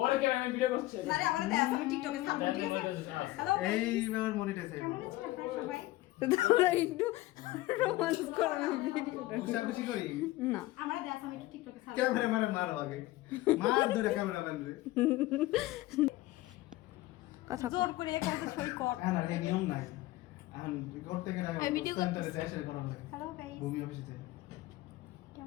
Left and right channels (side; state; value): right; quieter; 17.9 dB